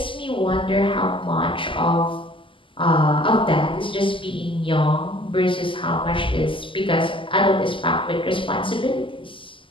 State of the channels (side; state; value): right; late; 0.25 ms